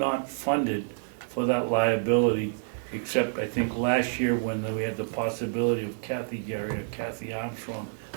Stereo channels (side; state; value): left; silent; 55 dB below the other